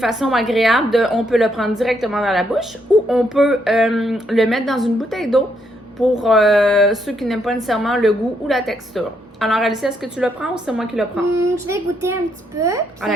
agréable on peut le prendre directement dans la bouche ou on peut le mettre dans une bouteille d'eau pour ceux qui n'aiment pas nécessairement le goût ou la texture. Alors, Alicia, est-ce que tu le prends ou c'est moi qui le prends? Je vais goûter un petit peu. À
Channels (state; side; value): normal; both; correlation 0.75